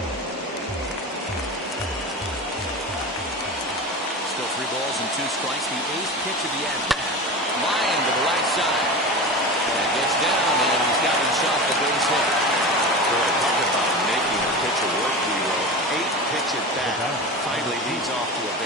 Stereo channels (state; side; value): normal; both; correlation 0.28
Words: Still 3 balls and 2 strikes. The 8th pitch of the at-bat. Line to the right side. That gets down, and he's got himself a base hit. Boy, talk about making a pitcher work, Leo. 8th pitch at bat finally leads off to a